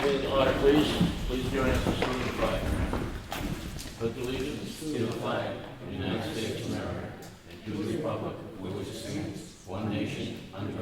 meeting to order, please. Please join us in saluting the flag. Pledge allegiance to the flag of the United States of America and to the republic for which it stands, one nation, under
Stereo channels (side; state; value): both; identical; correlation 1.00